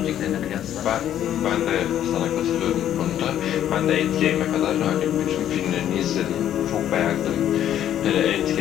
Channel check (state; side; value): quieter; right; 11.0 dB